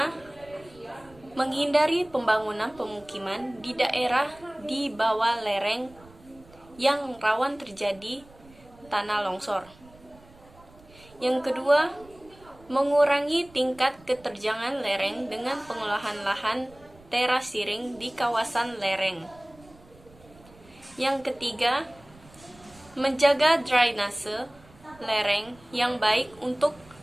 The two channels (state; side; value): noise; right; rumble, 25 dB below the sound